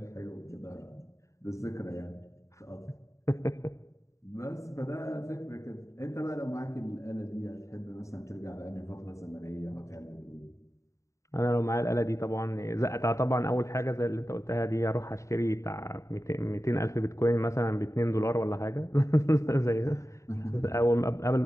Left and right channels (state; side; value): late; right; 0.15 ms